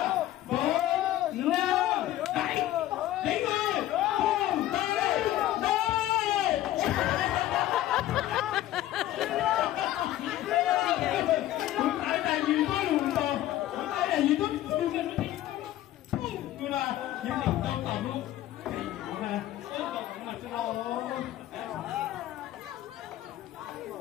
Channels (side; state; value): right; quieter; 13.9 dB